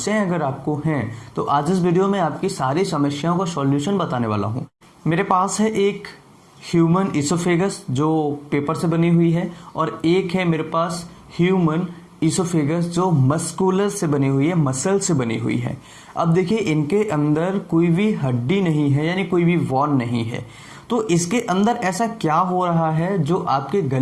अगर आपको हैं तो आज इस वीडियो में आपकी सारी समस्याओं का सॉल्यूशन बताने वाला हूँ। मेरे पास है एक ह्यूमन इसोफेगस जो पेपर से बनी हुई है और एक है मेरे पास ह्यूमन इसोफेगस जो मस्कुलर से बनी हुई है, मसल से बनी हुई है। अब देखिए इनके अंदर कोई भी हड्डी नहीं है, यानी कोई भी वॉन नहीं है। तो इसके अंदर ऐसा क्या हो रहा है जो आपके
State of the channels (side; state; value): both; identical; correlation 1.00